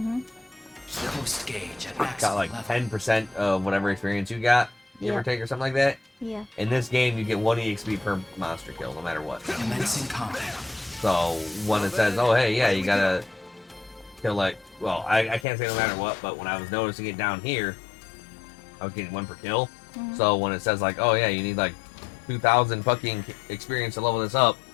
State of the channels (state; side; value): drops out; right; at 15.5 s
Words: Boost gauge at maximum got like level. 10% of whatever experience you got, give or Yeah. take, or something like that. Yeah. In this game, you get 1 EXP per monster kill, no matter what. Commencing combat. So when it says, oh hey, yeah, you gotta kill like, well, I can't say no matter what, but when I was noticing it down here, I was getting 1 per kill. Mhm. So when it says like, oh yeah, you need like 2,000 fucking experience to level this up,